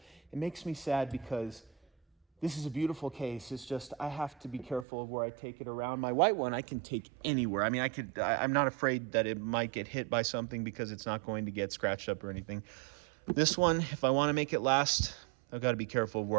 It makes me sad because this is a beautiful case. It's just I have to be careful of where I take it around. My white one I can take anywhere. I mean, I'm not afraid that it might get hit by something because it's not going to get scratched up or anything. This one, if I want to make it last, I've got to be careful of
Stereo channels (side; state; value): left; drops out; at 4.9 s